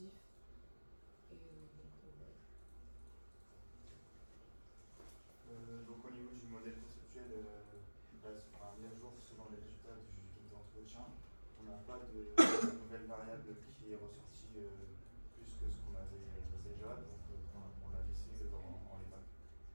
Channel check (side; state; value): both; inverted; correlation -1.00